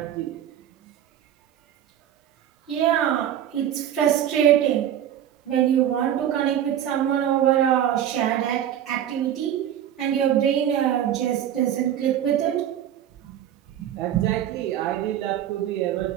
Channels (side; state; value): left; quieter; 10.6 dB